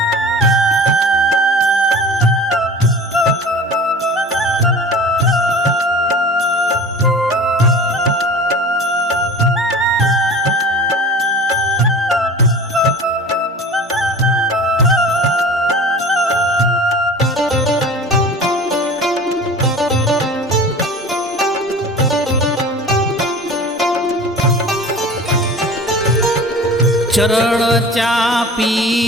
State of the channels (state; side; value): normal; both; correlation 0.39